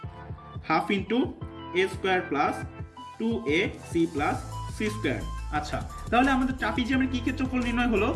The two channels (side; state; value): both; identical; correlation 1.00